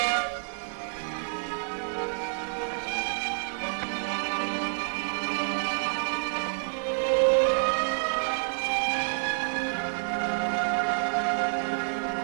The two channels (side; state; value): left; silent; digital silence